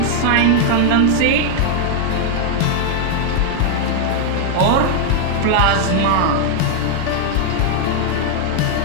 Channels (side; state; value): both; different; correlation 0.00